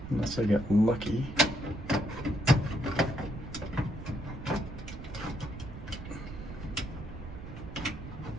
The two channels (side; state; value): right; noise; rumble, 10 dB below the sound